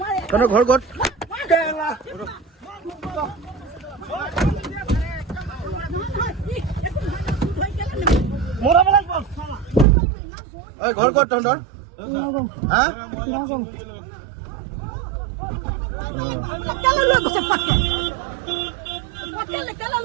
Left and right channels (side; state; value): left; drops out; at 9.9 s